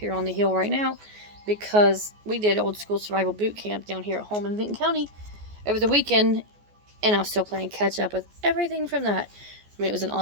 on the hill right now because we did old school survival boot camp down here at home in Vinton County over the weekend, and I'm still playing catch up with everything from that. I mean, it was an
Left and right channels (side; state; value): left; late; 14 ms